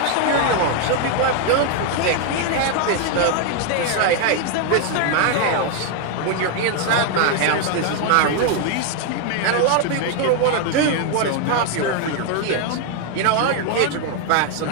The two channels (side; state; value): both; different; correlation 0.00